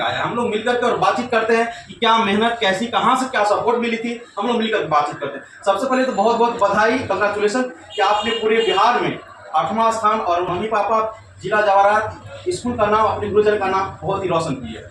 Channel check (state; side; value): identical; both; correlation 1.00